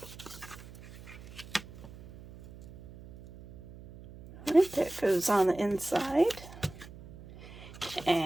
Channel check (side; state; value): right; noise; hum, 17 dB below the sound